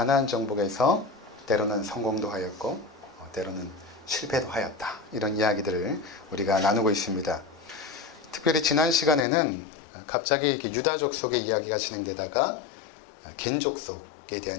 정복에서 때로는 성공도 하였고 때로는 실패도 하였다. 이런 이야기들을 우리가 나누고 있습니다. 특별히 지난 시간에는 갑자기 이렇게 유다족 속의 이야기가 진행되다가 겐족 속에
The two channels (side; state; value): right; drops out; at 9.2 s